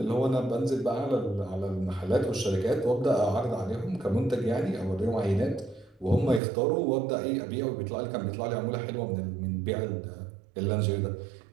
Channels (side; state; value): left; drops out; at 6.4 s